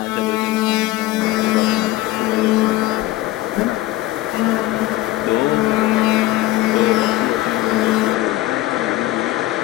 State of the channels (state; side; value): quieter; right; 17.0 dB